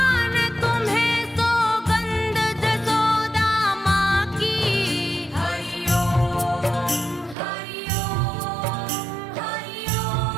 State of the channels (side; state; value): left; drops out; at 7.4 s